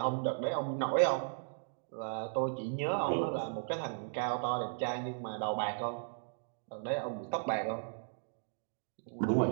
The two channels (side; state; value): left; silent; digital silence